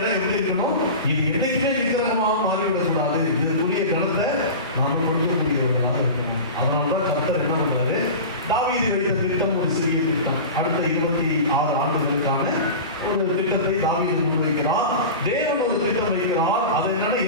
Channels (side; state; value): both; inverted; correlation -0.30